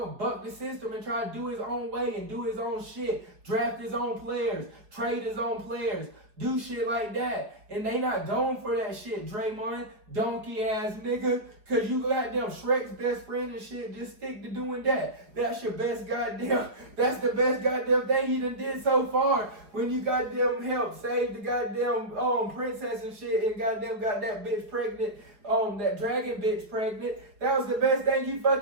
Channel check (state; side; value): late; left; 4.8 ms